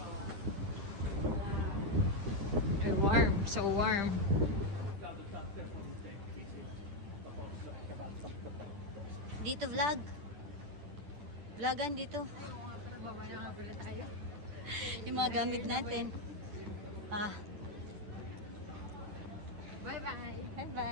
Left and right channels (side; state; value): left; late; 10 ms